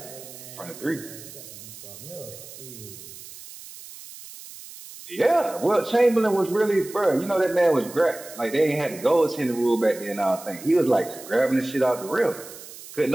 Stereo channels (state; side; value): noise; right; hiss, 16 dB below the sound